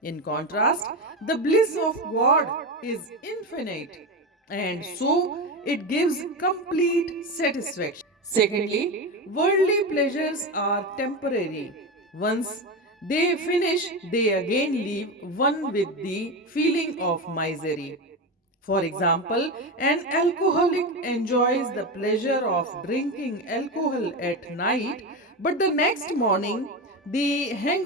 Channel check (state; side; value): normal; both; correlation 0.18